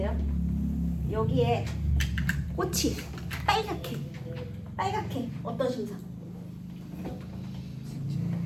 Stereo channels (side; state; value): both; identical; correlation 1.00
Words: 여기에 꽃이 빨갛게 어떤 심상?